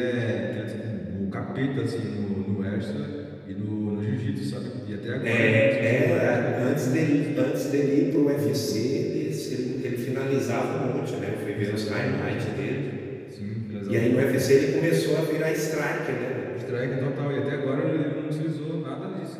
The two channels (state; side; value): identical; both; correlation 1.00